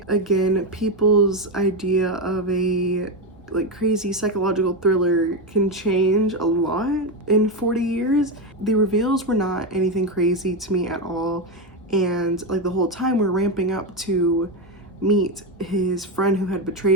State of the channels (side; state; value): both; normal; correlation 0.11